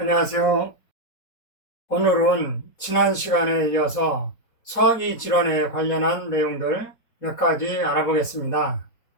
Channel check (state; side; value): late; right; 4.2 ms